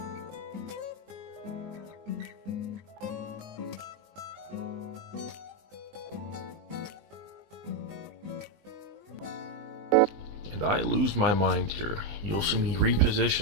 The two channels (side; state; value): left; late; 20 ms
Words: And I lose my mind here. You'll see me